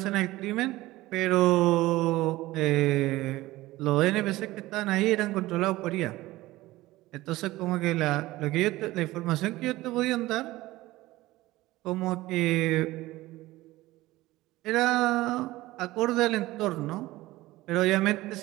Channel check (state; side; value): quieter; left; 18.0 dB